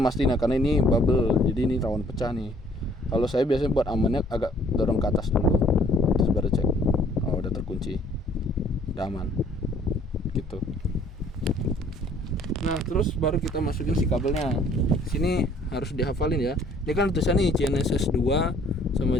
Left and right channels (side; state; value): both; normal; correlation 0.59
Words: mastiin ya, karena ini bubble, jadi ini rawan pecah nih. Kalau saya biasanya buat amannya agak dorong ke atas dulu, terus baru cek. Oh udah terkunci, udah aman gitu. Nah terus baru kita masukin si kabelnya. Sini harus dihafalin ya. Ini kan tulisan nih GNSS 2 sama